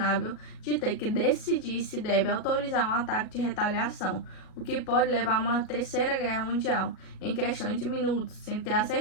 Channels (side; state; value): right; late; 37 ms